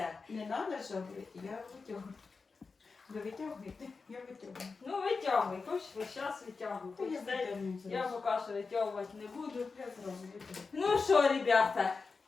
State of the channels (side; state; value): right; quieter; 4.5 dB